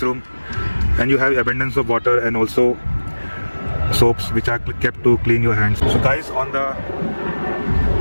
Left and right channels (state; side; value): inverted; both; correlation -1.00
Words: and you have abundance of water and also soaps which are kept to clean your hands. So guys, on the